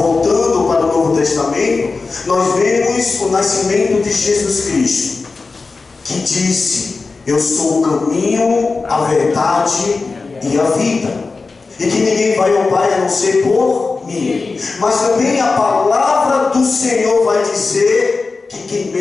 para o Novo Testamento, nós vemos o nascimento de Jesus Cristo, que disse: eu sou o caminho, a verdade e a vida, e que ninguém vai ao Pai a não ser por mim. Mas também a palavra do Senhor vai dizer que quem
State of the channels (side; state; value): right; quieter; 4.1 dB